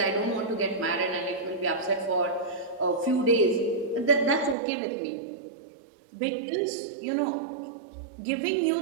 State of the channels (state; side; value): drops out; left; at 4.5 s